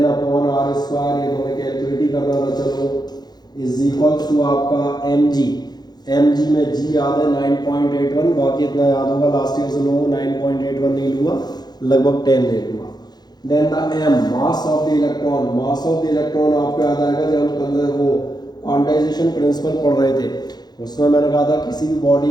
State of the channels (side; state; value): right; late; 0.20 ms